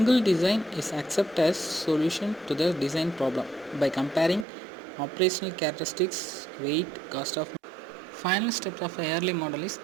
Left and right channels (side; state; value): left; drops out; at 4.5 s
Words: design is accepted as solution to the design problem by comparing operational characteristics, weight, cost of. Final step of a early model is